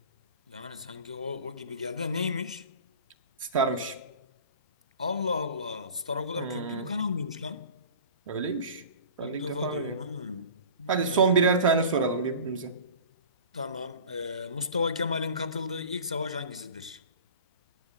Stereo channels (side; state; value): both; inverted; correlation -0.40